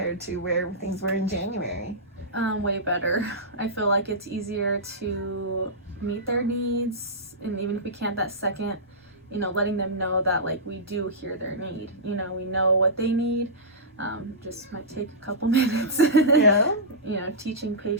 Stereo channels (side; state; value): both; normal; correlation -0.16